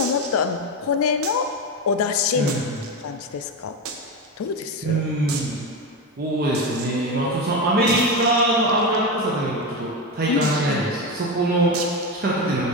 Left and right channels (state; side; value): normal; both; correlation 0.16